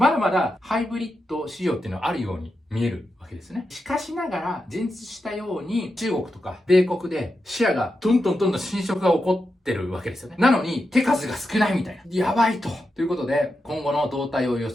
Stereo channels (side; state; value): both; normal; correlation 0.88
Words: だまだハイブリッド市場っていうのはあるように見えるわけですね。しかしながら、前述したように中国とか米国でシェアがどんどん侵食が起こってるわけですよね。なのに手数が少ないみたいな。やばいと。ということで、今後の動態を予